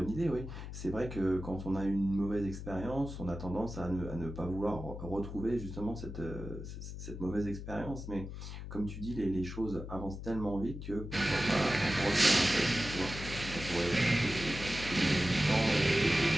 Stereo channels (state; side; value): noise; left; hum, 9 dB below the sound